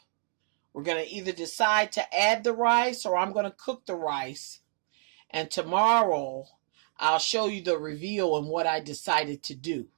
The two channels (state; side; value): silent; left; 59 dB below the other